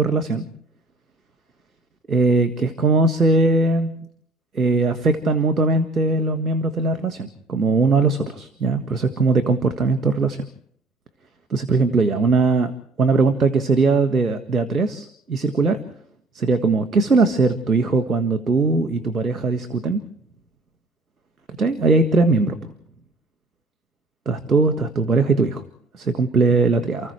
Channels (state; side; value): quieter; left; 3.2 dB